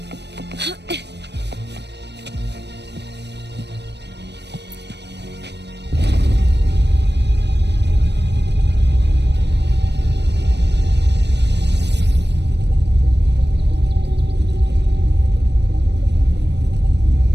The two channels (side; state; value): left; late; 0.50 ms